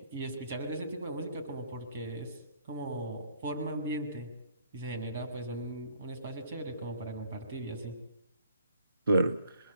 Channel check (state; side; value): inverted; both; correlation -0.60